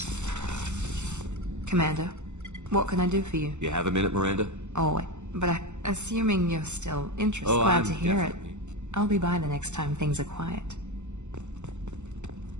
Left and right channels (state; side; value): late; left; 0.83 ms